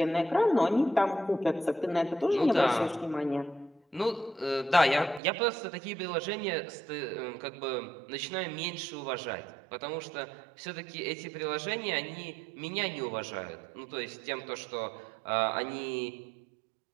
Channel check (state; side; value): drops out; left; at 5.2 s